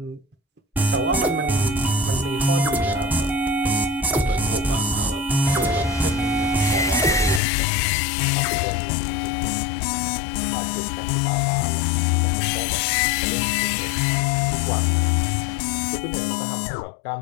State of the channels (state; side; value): drops out; right; at 7.4 s